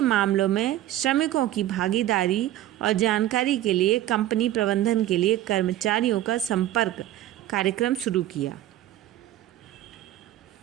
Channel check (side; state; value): left; quieter; 13.8 dB